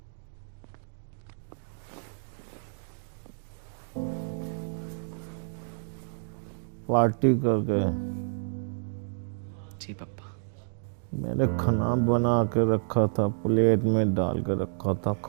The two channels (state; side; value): silent; left; digital silence